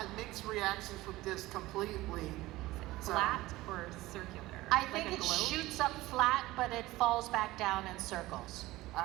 mixed reactions with this completely. So- Flat or circular? I Like think a it globe? shoots up flat, but it falls back down in circles. All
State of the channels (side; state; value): left; quieter; 18.2 dB